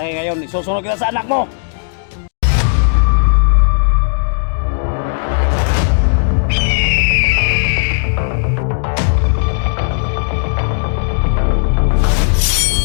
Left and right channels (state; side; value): silent; right; digital silence